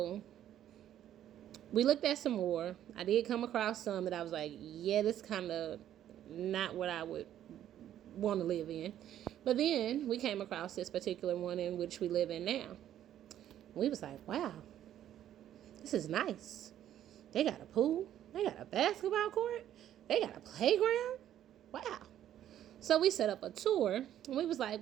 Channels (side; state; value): left; quieter; 11.3 dB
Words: we looked at some more. I did come across some that I was like, yeah, this kind of not what I would want to live in. But then we came across this particular one in which we live in now. We was like, wow, this is nice. They got a pool. They got a basketball court. They got a playground. Wow. So we set up a tour and we was